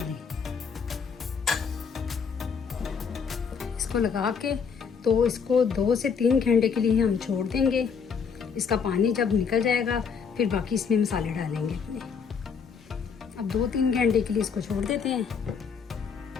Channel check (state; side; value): quieter; right; 6.2 dB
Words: इसको लगा के तो इसको 2 से 3 घंटे के लिए हम छोड़ देंगे। इसका पानी जब निकल जाएगा फिर बाकी इसमें मसाले डालेंगे अपने। अब 2-3 घंटे के लिए इसको छोड़ देते हैं।